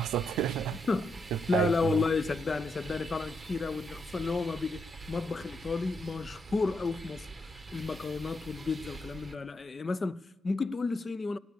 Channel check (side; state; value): both; normal; correlation 0.81